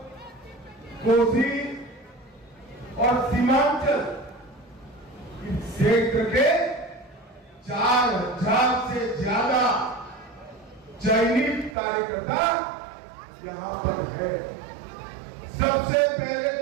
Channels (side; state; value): left; drops out; at 11.8 s